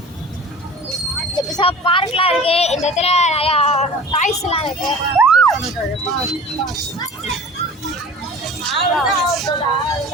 பார்க்லாம் இருக்கு. இந்த இடத்துல நிறையா டாய்ஸ் எல்லாம் இருக்கு.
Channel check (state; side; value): normal; both; correlation 0.40